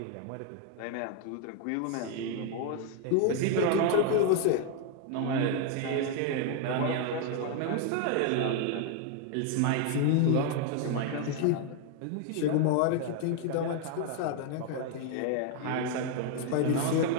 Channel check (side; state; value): both; different; correlation 0.00